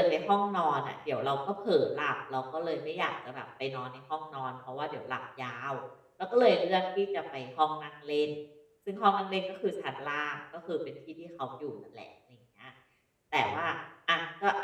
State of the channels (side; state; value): both; identical; correlation 1.00